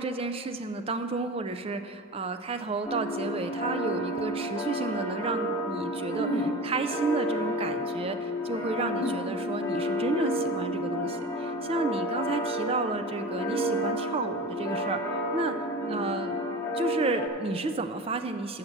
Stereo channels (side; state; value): both; normal; correlation 0.32